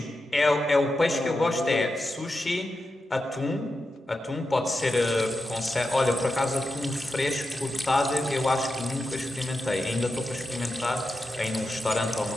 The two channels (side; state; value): both; normal; correlation 0.89